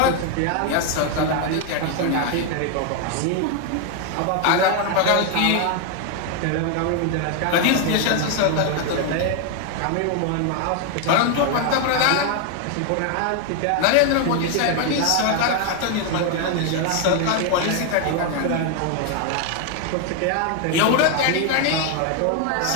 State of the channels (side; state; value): both; different; correlation 0.01